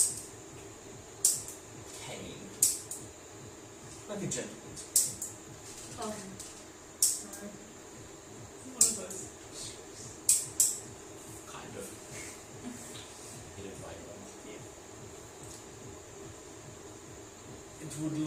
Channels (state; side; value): identical; both; correlation 1.00